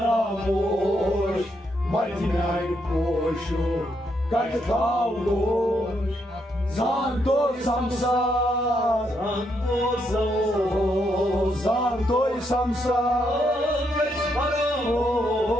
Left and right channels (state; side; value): normal; both; correlation 0.77